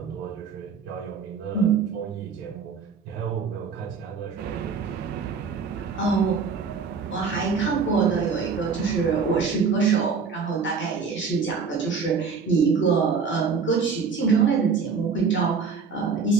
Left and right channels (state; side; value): quieter; left; 5.4 dB